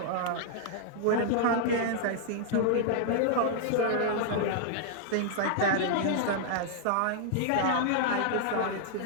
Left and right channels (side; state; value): both; different; correlation -0.01